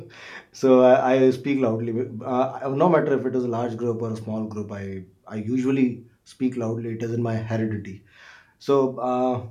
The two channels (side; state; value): both; identical; correlation 1.00